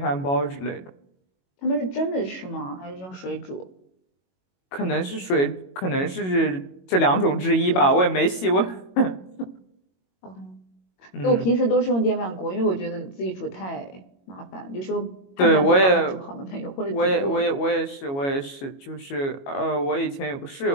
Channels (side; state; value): right; late; 22 ms